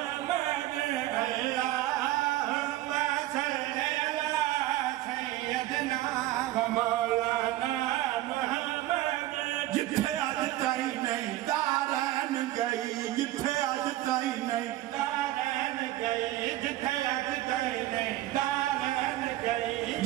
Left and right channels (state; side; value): quieter; left; 15.4 dB